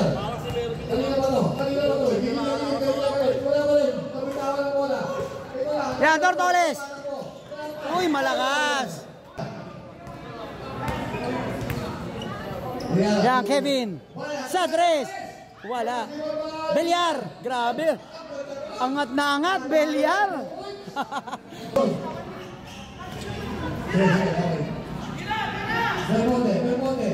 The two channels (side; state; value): both; identical; correlation 1.00